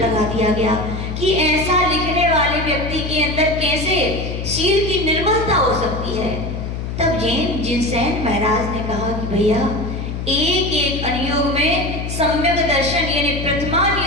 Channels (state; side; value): noise; left; hum, 5 dB below the sound